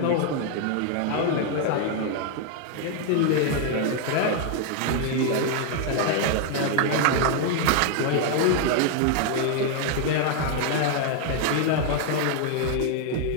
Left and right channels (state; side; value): different; both; correlation 0.00